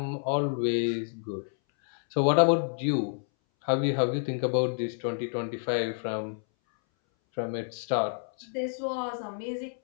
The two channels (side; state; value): right; silent; 59 dB below the other